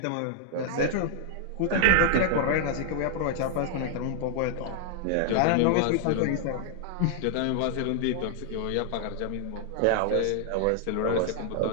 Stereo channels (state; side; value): different; both; correlation 0.00